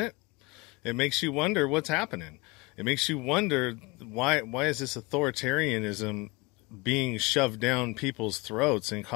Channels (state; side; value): quieter; right; 25.2 dB